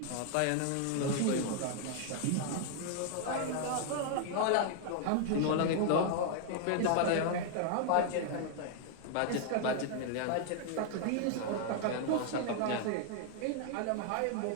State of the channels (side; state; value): both; different; correlation 0.00